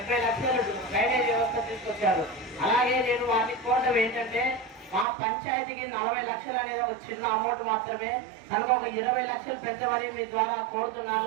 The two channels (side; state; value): left; drops out; at 5.1 s